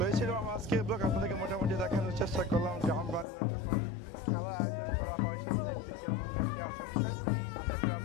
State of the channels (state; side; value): drops out; right; at 3.2 s